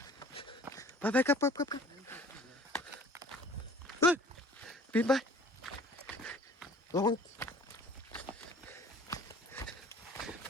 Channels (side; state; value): both; normal; correlation 0.50